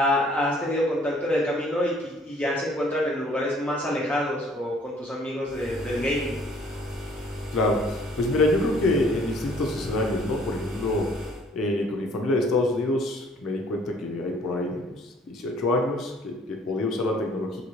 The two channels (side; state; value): both; normal; correlation 0.58